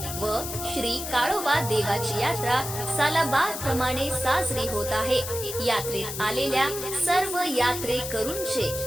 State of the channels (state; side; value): noise; left; hiss, 7 dB below the sound